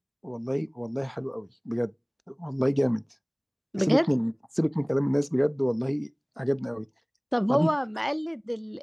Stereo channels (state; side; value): identical; both; correlation 1.00